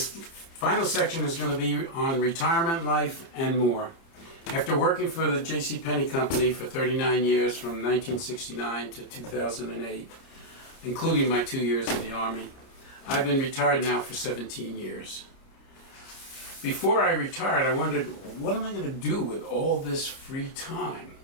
final section is going to be on retirement life and more. After working for the JCPenney Company for 39 years from 1969 to 2008, including my 2 years in the Army, I've been retired now for 17 years. Before I retired, I wondered, what am I going to do with all this free time?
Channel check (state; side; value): late; right; 30 ms